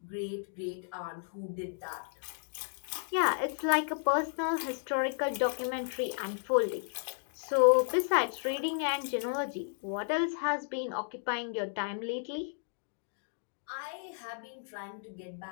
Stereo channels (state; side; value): silent; right; digital silence